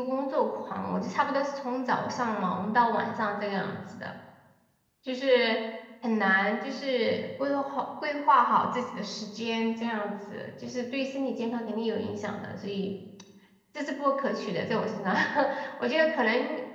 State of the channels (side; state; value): both; identical; correlation 1.00